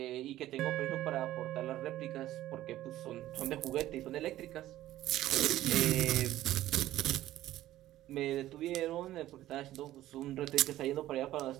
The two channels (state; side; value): quieter; left; 14.3 dB